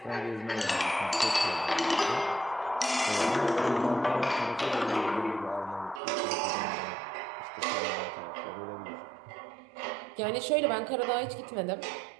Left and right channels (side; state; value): left; drops out; at 6.0 s